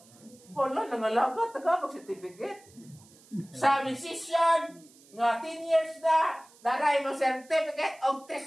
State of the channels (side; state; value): right; noise; hiss, 26 dB below the sound